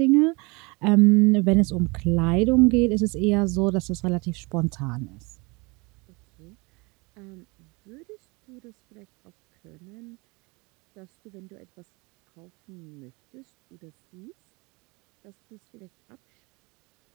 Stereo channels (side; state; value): left; quieter; 27.3 dB